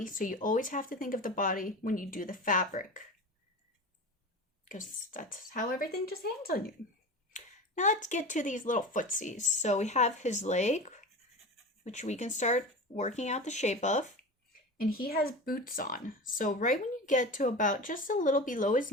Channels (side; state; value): both; normal; correlation 0.30